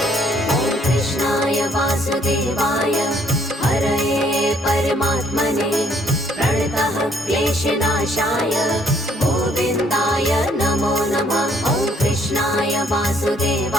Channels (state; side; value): normal; both; correlation 0.65